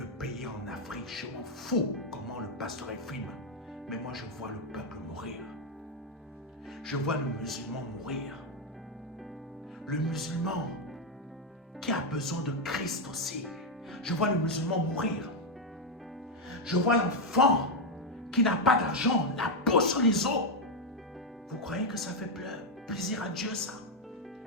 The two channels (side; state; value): both; normal; correlation 0.03